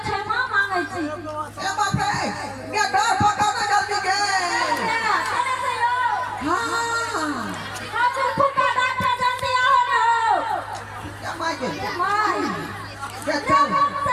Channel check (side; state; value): both; identical; correlation 1.00